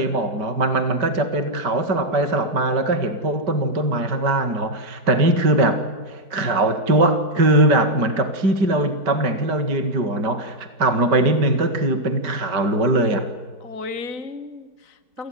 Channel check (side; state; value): left; late; 5.1 ms